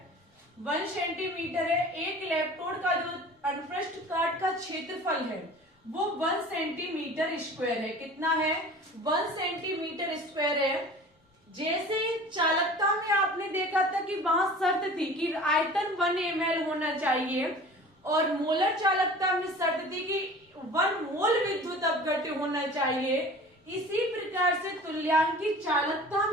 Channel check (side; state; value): both; normal; correlation 0.42